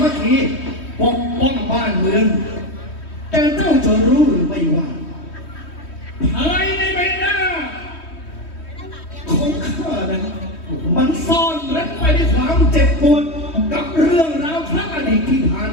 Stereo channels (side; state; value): right; late; 3.1 ms